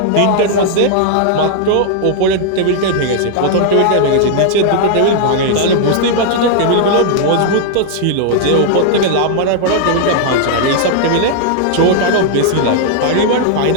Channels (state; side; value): different; both; correlation 0.00